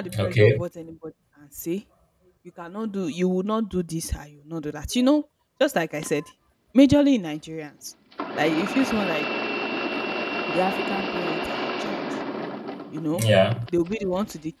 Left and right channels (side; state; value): both; identical; correlation 1.00